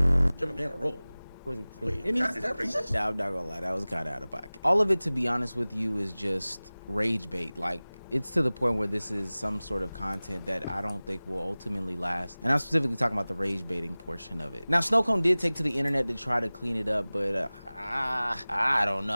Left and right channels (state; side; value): inverted; both; correlation -0.99